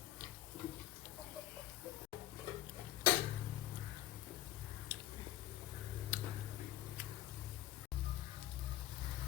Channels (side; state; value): right; quieter; 14.2 dB